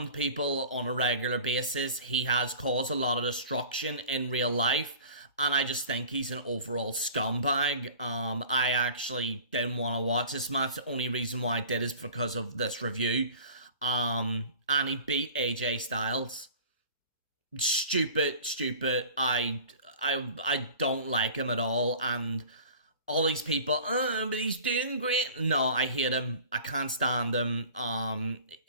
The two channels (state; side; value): inverted; both; correlation -0.43